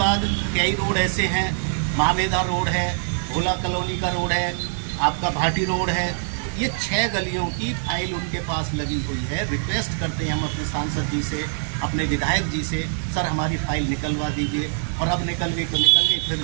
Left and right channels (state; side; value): silent; left; digital silence